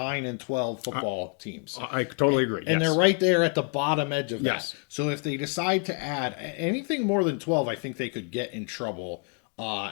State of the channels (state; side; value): quieter; right; 34.6 dB